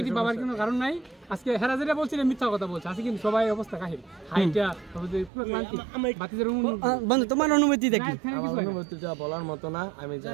ভাবার কোনো কারণ নাই। আজকে হেরা যেটা বলছিল মিথ্যা কথা বলছে, আজকে কিন্তু সবাই অবস্থা কাহিল, হাইটা পুরো ক্লান্তি। বাতিদের বন্ধু তোমার অনুভূতিটা কি? আমার অনুভূতিটা বলার মতো না। আমি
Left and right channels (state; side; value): drops out; left; at 5.3 s